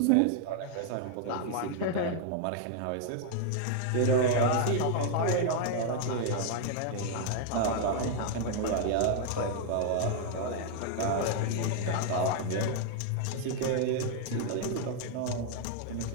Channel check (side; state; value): both; different; correlation 0.00